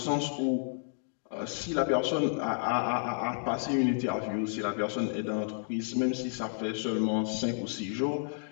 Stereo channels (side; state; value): right; silent; digital silence